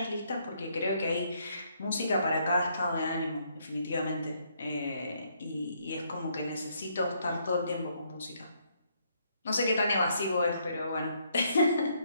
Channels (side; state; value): both; inverted; correlation -0.71